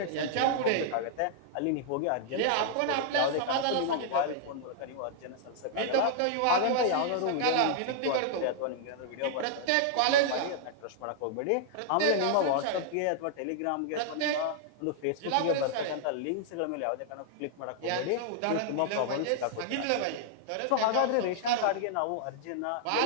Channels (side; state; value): both; different; correlation -0.01